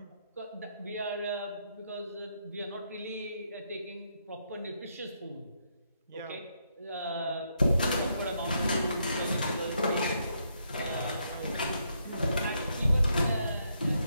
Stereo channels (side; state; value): both; inverted; correlation -0.77